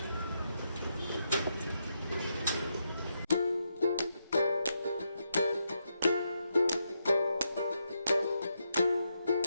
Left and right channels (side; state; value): both; inverted; correlation -0.82